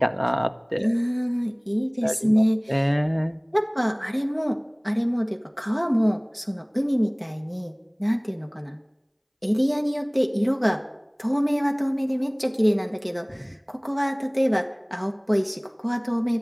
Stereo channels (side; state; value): both; identical; correlation 1.00